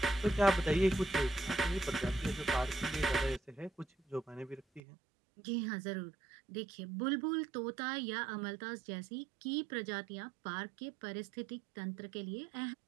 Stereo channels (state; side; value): drops out; left; at 4.8 s